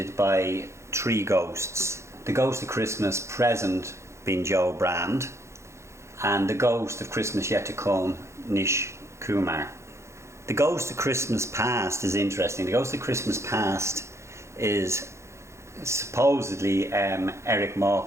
by three ghosts. The Ghost of Christmas Present being Joe Brand, and the Ghost of Christmas Yet to Come, Nish Kumar. The Ghost of Christmas Past is interesting. The Ghost of Christmas Past is supposedly Eric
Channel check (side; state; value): left; late; 0.14 ms